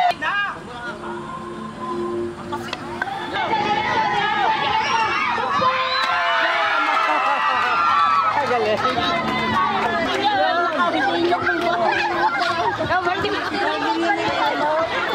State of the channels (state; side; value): identical; both; correlation 1.00